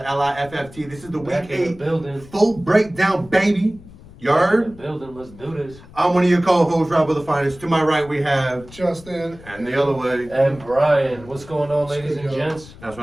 LIFFT. This is the Back Week in the 8 building. full breakdown, baby. You heard? Building. Let's do this. I'm one of your co-hosts, Rob of the Finest. To my right, we have... Justin. And the other way. And Brian, what's going on, ladies and Good, gents? That's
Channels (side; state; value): left; noise; rumble, 20 dB below the sound